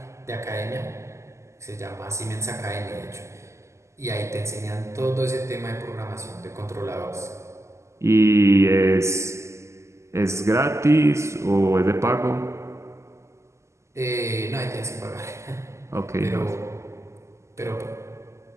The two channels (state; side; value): late; left; 0.13 ms